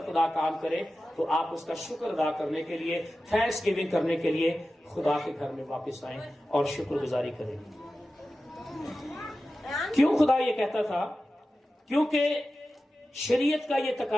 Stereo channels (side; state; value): both; normal; correlation 0.94